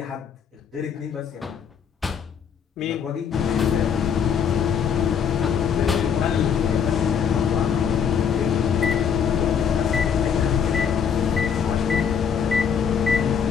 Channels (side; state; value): right; quieter; 7.3 dB